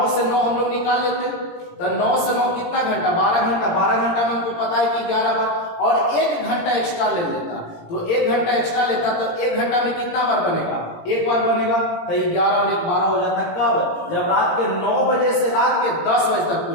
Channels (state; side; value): late; right; 18 ms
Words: से 9 हम लोग निकाल लेते हैं। तो 9 से 9 कितना घंटा, 12 घंटा। 12 घंटा में हमको पता है कि 11 बार, और 1 घंटा एक्स्ट्रा ले लेता, तो 1 घंटा एक्स्ट्रा लेता, तो 1 घंटा में कितना बार बनेगा, 1 बार बनेगा। तो 11 और 1 12 हो जाता। कब, जब रात के 9 बजे से रात के 10 बजे तक